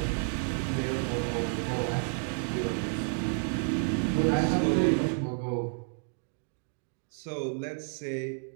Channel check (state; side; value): silent; left; 56 dB below the other